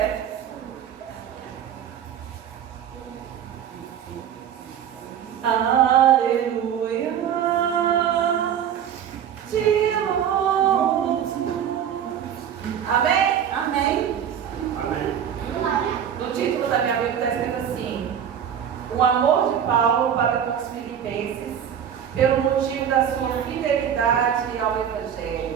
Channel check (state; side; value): quieter; left; 8.9 dB